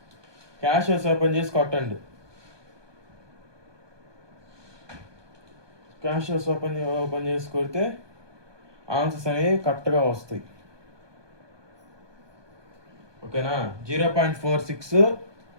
క్యాషియస్ ఓపెన్ చేసి కొట్టండి. క్యాషియస్ ఓపెన్ చేసి కొడితే ఆన్సర్స్ అనేవి కరెక్ట్గా వస్తాయి. ఓకేనా, 0.46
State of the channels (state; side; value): late; left; 1.2 ms